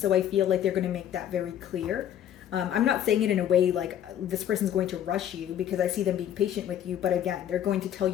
I feel like they're going to make that very clear. I'm not saying it in a way like this person's going to rush you, because I see them being patient with you. But again, they're going to tell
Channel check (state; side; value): quieter; right; 10.4 dB